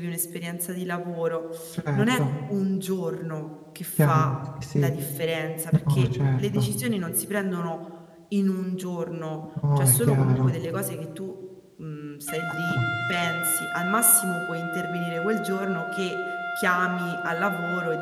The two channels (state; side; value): identical; both; correlation 1.00